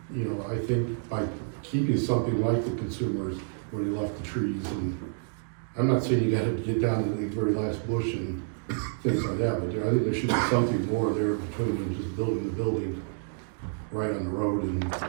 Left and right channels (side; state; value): left; silent; digital silence